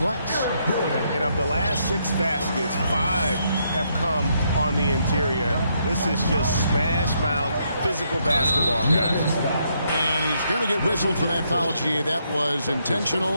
And of the last 6 baskets, 5 have come on the interior. This is just smash mouth physical basketball, guys. And he's going to get whistled for that foul, G. That was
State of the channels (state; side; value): inverted; both; correlation -0.75